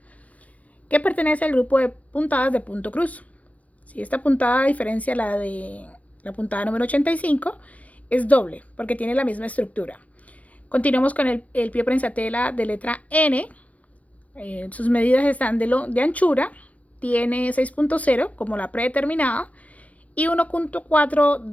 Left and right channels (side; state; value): right; late; 0.067 ms